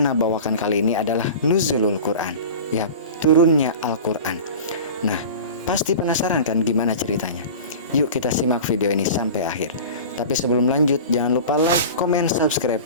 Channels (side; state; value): both; inverted; correlation -0.35